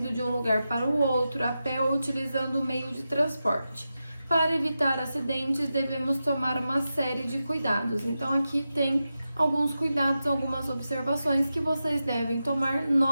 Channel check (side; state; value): both; inverted; correlation -0.91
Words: de um lugar para o outro, a pé ou utilizando o meio de transporte. Para evitar acidentes, devemos tomar uma série de cuidados. Então, aqui tem alguns cuidados, algumas observações que vocês devem tomar,